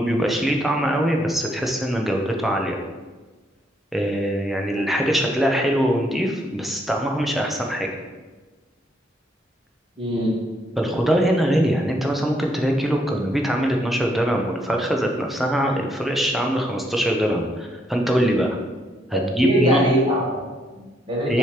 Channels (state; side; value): normal; both; correlation 0.73